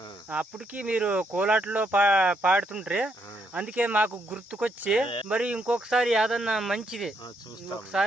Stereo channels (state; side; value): normal; both; correlation 0.75